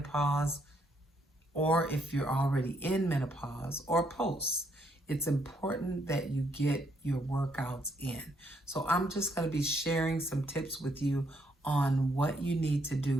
or if you're already in menopause or post. It's important that you get your workouts in. So I'm just going to be sharing some tips with you on what you need to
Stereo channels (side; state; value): both; normal; correlation 0.72